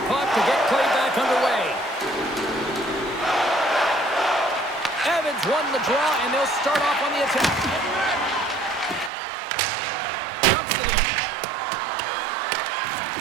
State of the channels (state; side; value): drops out; left; at 9.1 s